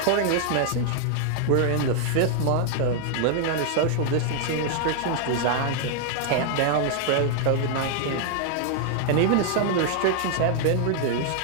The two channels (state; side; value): different; both; correlation 0.00